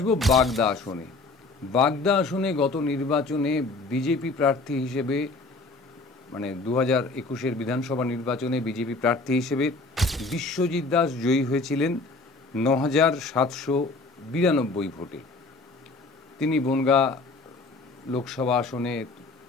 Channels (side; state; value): right; quieter; 3.5 dB